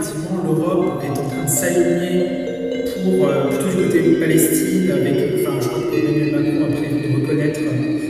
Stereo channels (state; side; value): identical; both; correlation 1.00